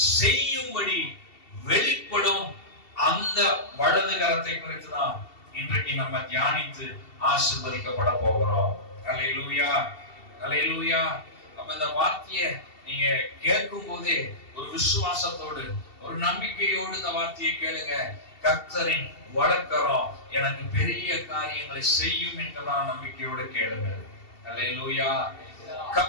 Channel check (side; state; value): right; late; 2.7 ms